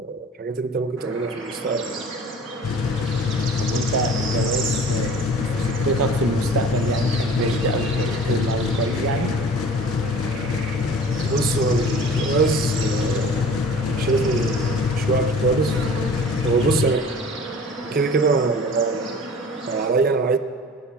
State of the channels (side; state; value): both; normal; correlation 0.44